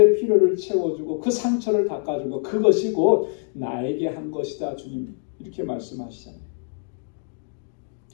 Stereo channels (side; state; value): right; silent; 62 dB below the other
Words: 필요를 채워주고 그 상처를 닦아주고 그것이 곧 나에게 한 것이다. 주님 이렇게 말씀하시잖아요.